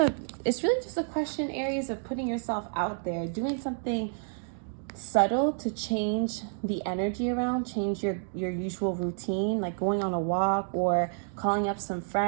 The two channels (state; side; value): silent; left; digital silence